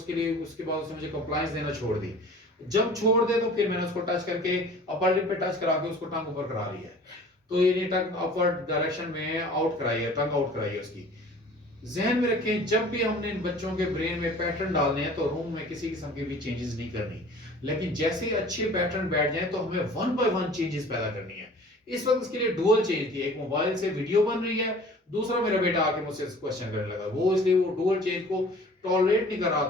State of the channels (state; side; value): normal; both; correlation 0.46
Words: लिए उसके बाद उसने मुझे कंप्लायंस देना छोड़ दी। जब छोड़ दे तो फिर मैंने उसको टच करके अपर लिप पे टच करा के उसको टंग ऊपर करा लिया है। तो ये टंग अपवर्ड डायरेक्शन में आउट कराई है, टंग आउट कराई है उसकी। जहन में रखें जब भी हमने इन बच्चों के ब्रेन में पैटर्न डालने हैं तो रूम में किसी किस्म की भी चेंजेस नहीं करनी। लेकिन जैसे ही अच्छे पैटर्न बैठ जाए तो हमें 1 बाय 1 चेंजेस पैदा करनी है। इस वक्त इसके लिए डुअल चेंज थी, एक मोबाइल से वीडियो बन रही है, दूसरा मेरा बेटा आके मुझसे क्वेश्चन करने लगा, वो इसलिए वो डुअल चेंज को टॉलरेट नहीं कर रहा